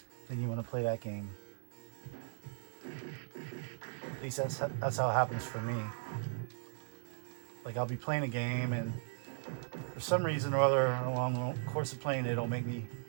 then you want to play that game. At least that's how it happens for me. Like, I'll be playing a game, and for some reason or other, along the course of playing it, it'll make me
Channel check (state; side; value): silent; left; 53 dB below the other